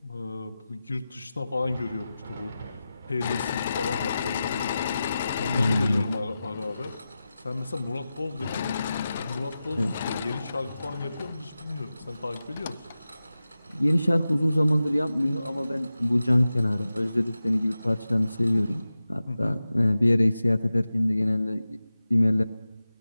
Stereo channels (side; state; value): both; inverted; correlation -0.93